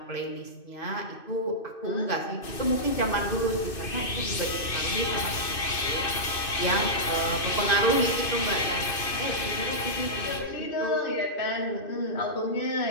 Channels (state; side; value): late; right; 2.6 ms